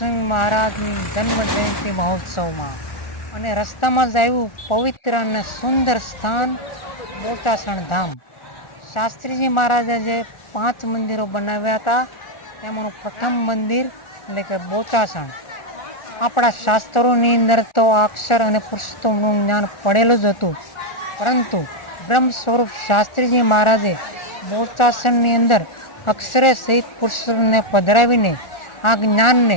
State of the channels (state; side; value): late; right; 1.4 ms